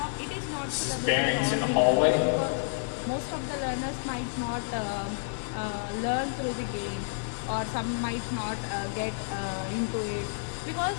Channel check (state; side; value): silent; right; 58 dB below the other